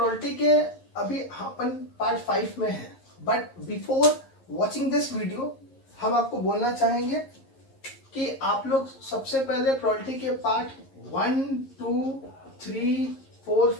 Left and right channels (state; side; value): late; right; 11 ms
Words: के अभी अपन पार्ट 5 में है, but before watching this video हम आपको बोलना चाहेंगे कि आप लोग सबसे पहले प्रोबेबिलिटी के पार्ट 1, 2, 3,